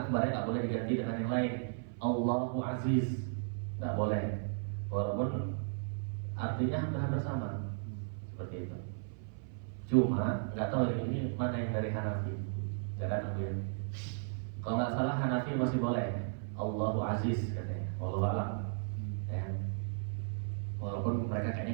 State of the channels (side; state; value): left; silent; 54 dB below the other